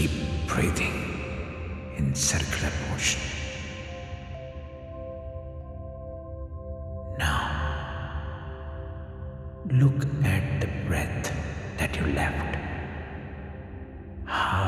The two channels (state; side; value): identical; both; correlation 1.00